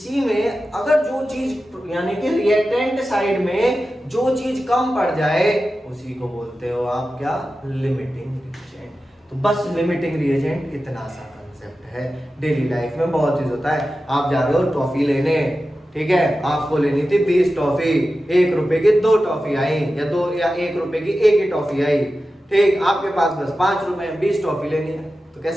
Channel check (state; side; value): normal; both; correlation 0.93